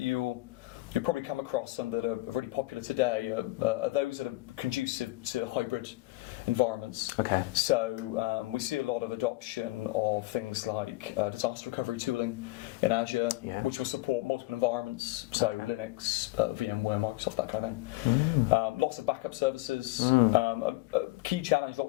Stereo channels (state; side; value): quieter; right; 20.1 dB